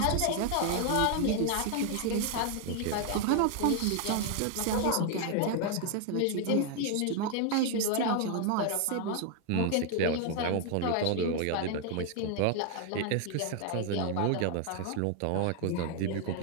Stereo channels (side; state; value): both; different; correlation 0.00